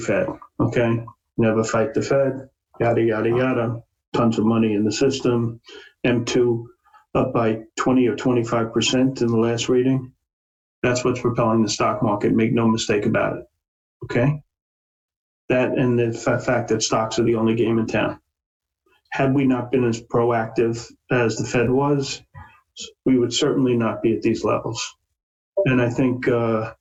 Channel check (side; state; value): both; identical; correlation 1.00